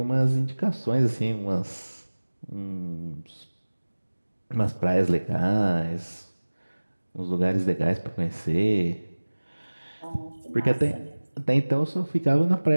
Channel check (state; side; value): inverted; both; correlation -1.00